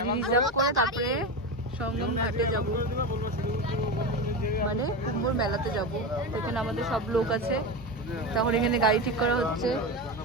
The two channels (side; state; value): both; normal; correlation 0.20